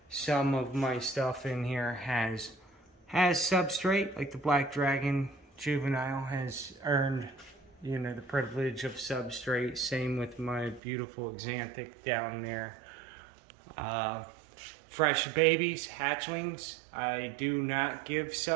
some of my stuff in here has substrate, like the Black Dragon Juvenile has earned, you know, the privilege of substrate. Same with my beautiful Xanthic down there. Fresh babies, hatchlings, I do not give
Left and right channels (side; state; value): left; drops out; at 10.8 s